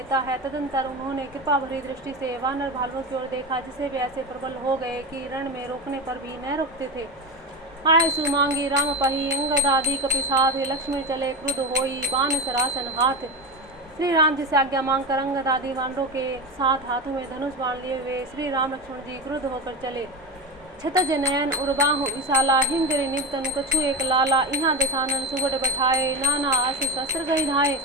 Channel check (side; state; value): both; normal; correlation 0.20